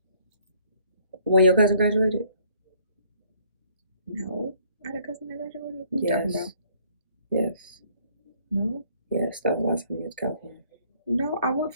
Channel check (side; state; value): both; inverted; correlation -0.62